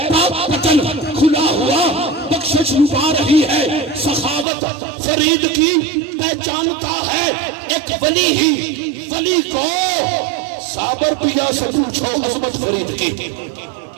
پاک پتن کھلا ہوا بخشش لبا رہی ہے سخاوت فرید کی پہچانتا ہے ایک ولی ہی ولی کو صابر پیا سے پوچھو عظمت فرید کی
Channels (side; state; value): left; drops out; at 4.5 s